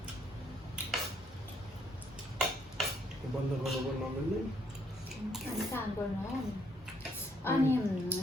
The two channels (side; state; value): both; normal; correlation 0.69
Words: बन्द गर्नु पनि नमिल्ने काम गर्नु हो अनि